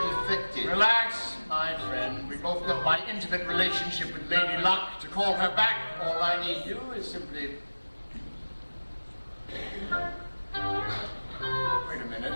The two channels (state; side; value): inverted; both; correlation -1.00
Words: effective. Relax, my friend. We both know my intimate relationship with Lady Luck. To call her back, all I need do is simply... Wait a minute.